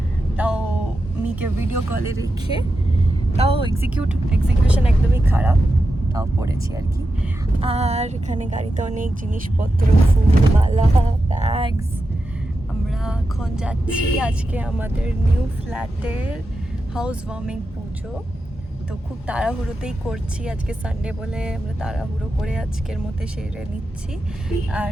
তাও মিকে ভিডিও কলে রেখে। তাও এক্সিকিউশন একদমই খারাপ, তাও পরেছি আর কি। আর এখানে গাড়িতে অনেক জিনিসপত্র, ফুল মালা, ব্যাগস। আমরা এখন যাচ্ছি আজকে আমাদের নিউ ফ্ল্যাটের হাউস ওয়ার্মিং পুজো। তো খুব তাড়াহুড়োতেই করছি, আজকে সানডে বলে আমরা তাড়াহুড়ো করে আজকের মধ্যে সেরে নিচ্ছি। আর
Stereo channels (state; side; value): normal; both; correlation 0.89